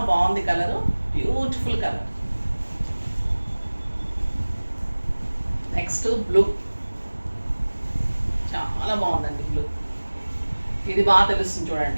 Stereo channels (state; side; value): inverted; both; correlation -1.00